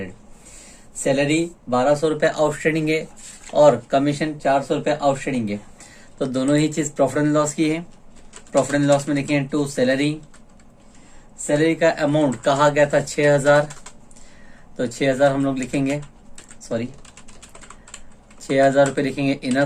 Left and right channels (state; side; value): identical; both; correlation 1.00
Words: सैलरी 1200 रुपये आउटस्टैंडिंग है और कमीशन 400 रुपये आउटस्टैंडिंग है, तो दोनों ही चीज प्रॉफिट एंड लॉस की है। प्रॉफिट एंड लॉस में लिखेंगे टू सैलरी, सैलरी का अमाउंट कहा गया था 6000, तो 6000 हम लोग लिखेंगे, 6000 रुपये लिखेंगे इनर